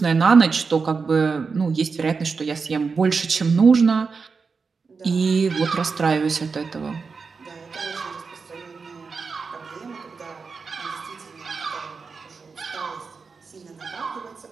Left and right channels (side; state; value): left; quieter; 4.9 dB